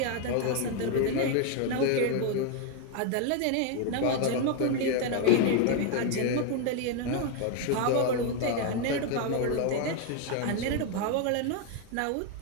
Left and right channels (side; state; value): both; different; correlation 0.01